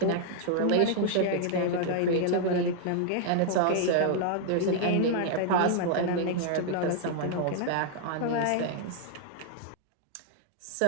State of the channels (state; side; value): different; both; correlation 0.00